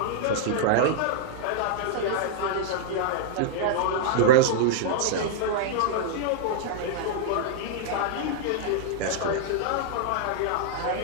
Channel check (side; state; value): both; different; correlation -0.02